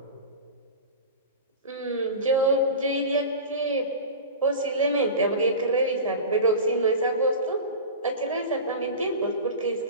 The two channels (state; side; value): inverted; both; correlation -0.31